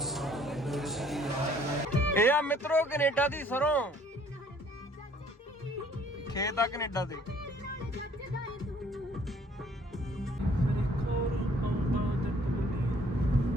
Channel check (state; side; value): normal; both; correlation 0.58